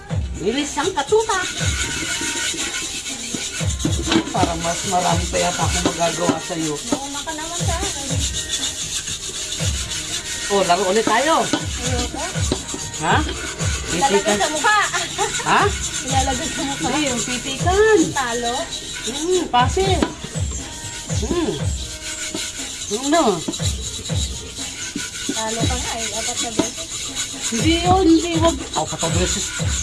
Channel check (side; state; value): both; identical; correlation 1.00